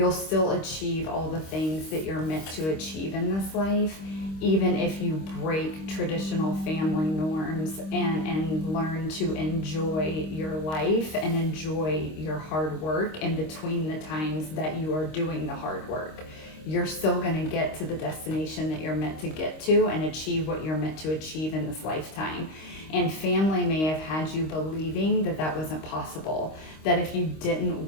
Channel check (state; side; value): late; right; 26 ms